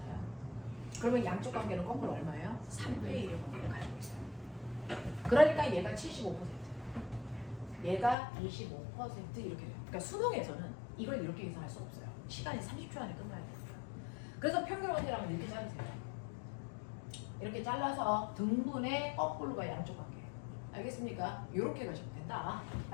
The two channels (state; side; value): drops out; right; at 8.2 s